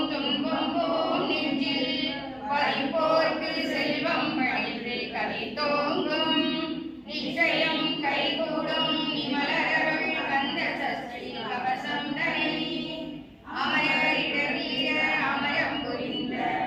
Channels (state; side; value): identical; both; correlation 1.00